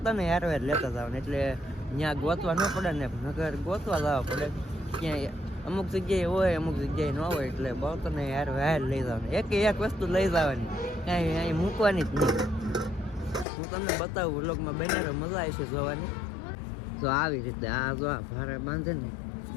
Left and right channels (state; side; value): drops out; right; at 13.5 s